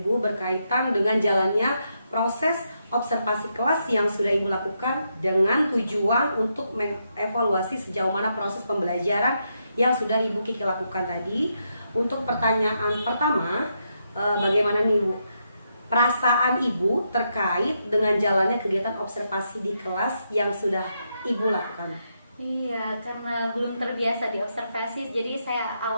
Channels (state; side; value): inverted; both; correlation -0.81